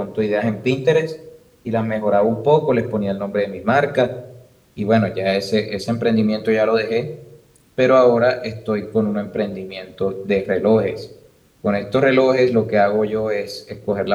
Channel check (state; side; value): identical; both; correlation 1.00